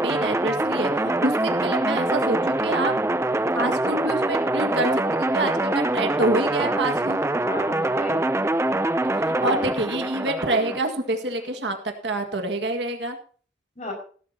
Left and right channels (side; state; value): both; normal; correlation 0.53